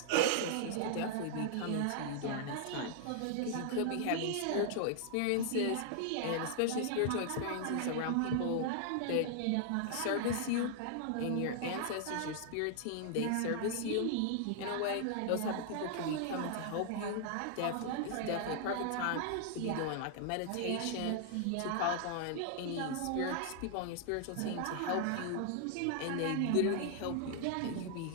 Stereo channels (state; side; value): different; both; correlation -0.01